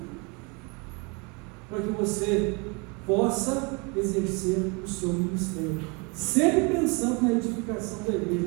para que você possa exercer o seu ministério, sempre pensando na edificação da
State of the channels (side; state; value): left; quieter; 30.8 dB